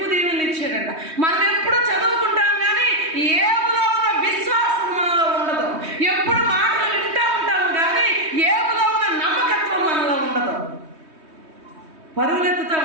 దీవెనలు ఇచ్చాడంట. మనం ఎప్పుడు చదువుకుంటాం కానీ ఏబులో ఉన్న విశ్వాసం మనలో ఉండదు. ఎప్పుడు మాటలు వింటూ ఉంటాము కానీ ఏబులో ఉన్న నమ్మకత్వం మనలో ఉండదు. పరుగులెత్తుతూ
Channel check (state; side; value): late; left; 3.2 ms